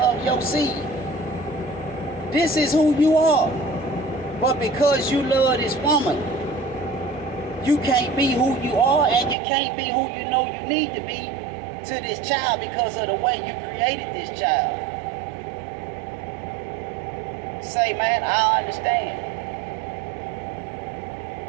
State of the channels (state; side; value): drops out; left; at 9.3 s